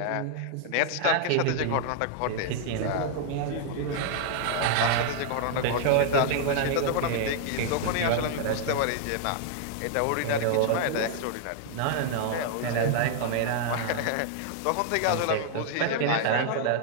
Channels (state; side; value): different; both; correlation -0.01